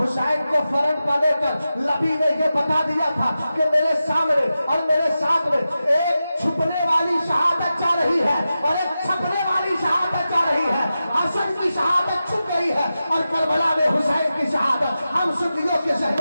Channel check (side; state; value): both; inverted; correlation -0.92